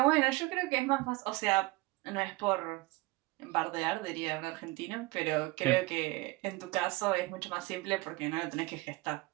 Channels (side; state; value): left; quieter; 21.7 dB